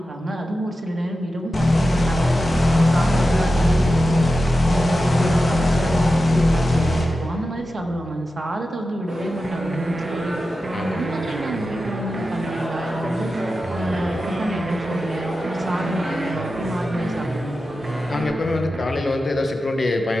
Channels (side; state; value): both; normal; correlation 0.92